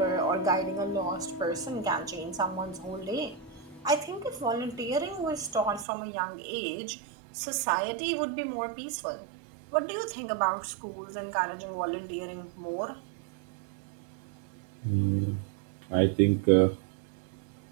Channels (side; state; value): left; drops out; at 5.9 s